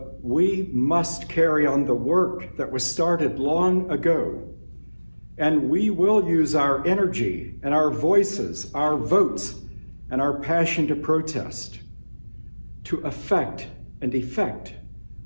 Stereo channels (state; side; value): inverted; both; correlation -1.00